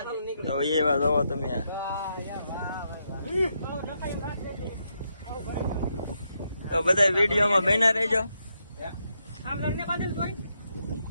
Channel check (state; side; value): inverted; both; correlation -0.81